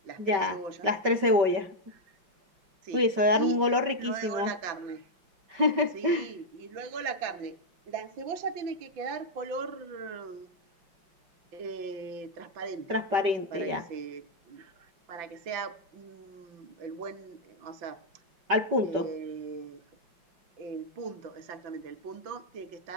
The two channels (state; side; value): late; left; 5.2 ms